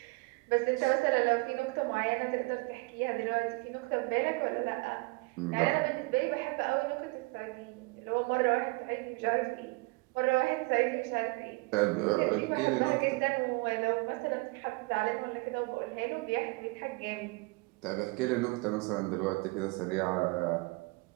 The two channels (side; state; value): left; quieter; 26.6 dB